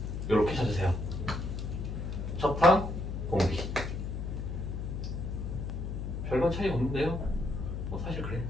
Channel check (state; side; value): noise; left; hum, 4 dB below the sound